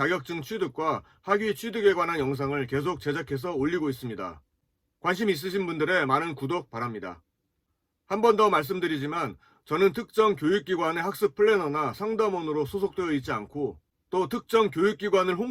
취득과 학위 취득에 관한 영상을 계속 제작해서 올리고 있습니다. 관심 있으신 분들의 많은 구독 바랍니다. 한 번 더 말씀드리지만 저는 특정 교육기관의 학습 플래너나 상담원으로 소속되어 있지 않고 또 특정 교육기관을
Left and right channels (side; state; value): both; identical; correlation 1.00